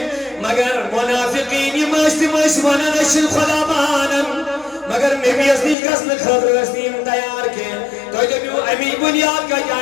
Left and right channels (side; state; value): right; drops out; at 5.8 s